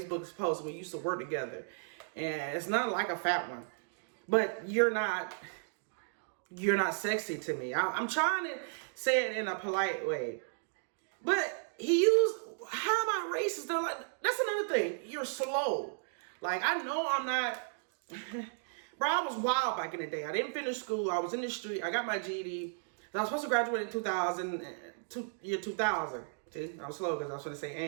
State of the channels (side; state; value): left; silent; digital silence